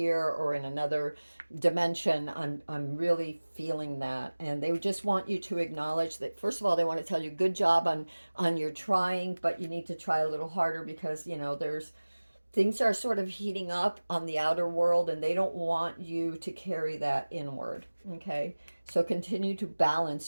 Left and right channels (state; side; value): inverted; both; correlation -1.00